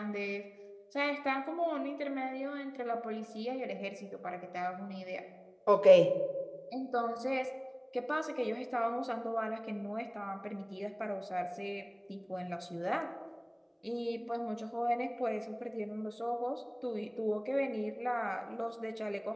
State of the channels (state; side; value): identical; both; correlation 1.00